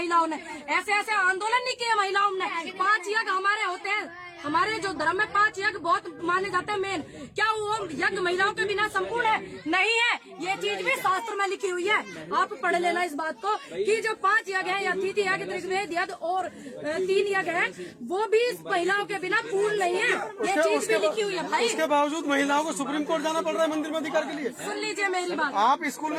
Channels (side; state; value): both; identical; correlation 1.00